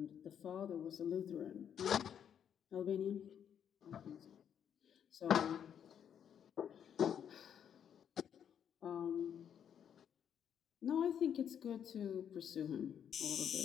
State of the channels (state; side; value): quieter; right; 8.7 dB